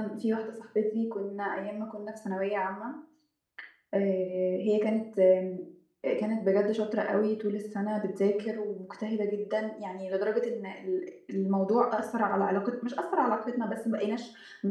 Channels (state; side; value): identical; both; correlation 1.00